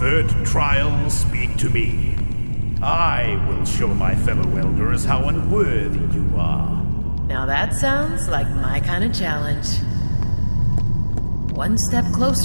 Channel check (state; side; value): inverted; both; correlation -1.00